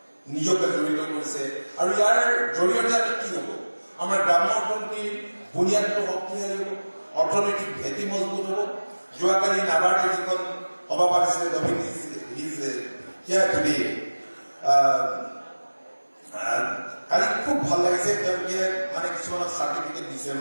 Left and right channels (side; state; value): both; inverted; correlation -1.00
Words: নিজকে জড়িত কৰিছে। আৰু ইয়াৰ জৰিয়তে আমি কি হ'ব, আমাৰ গ্ৰাম্য অৰ্থনীতিৰ বুনিয়াদটো শক্তিশালী হ'ব, অৰ্থনৈতিক ভেটি মজবুত হ'ব। যোৱাকালি নাবাৰ্ডে যিখন সভা পাতিছিলে কালি খুব ভাল লাগিছে, তেওঁলোকে মানে কিছুমানক চাৰ্টিফিকেট দিছে,